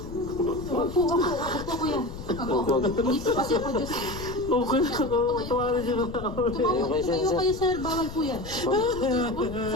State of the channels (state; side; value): noise; left; rumble, 11 dB below the sound